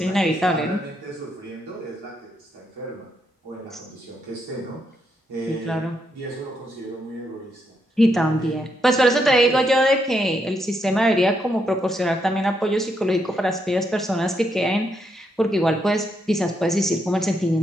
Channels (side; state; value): both; normal; correlation 0.78